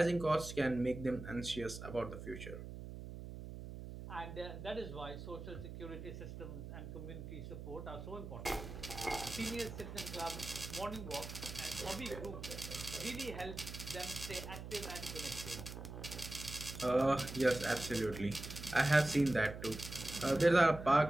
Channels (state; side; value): noise; right; hum, 10 dB below the sound